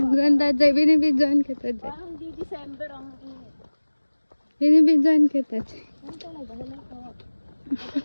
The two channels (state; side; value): inverted; both; correlation -1.00